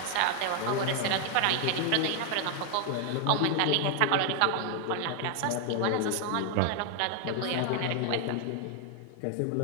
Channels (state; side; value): different; both; correlation 0.00